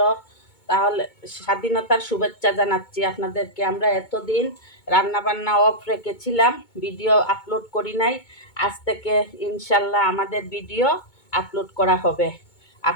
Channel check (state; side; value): late; right; 2.2 ms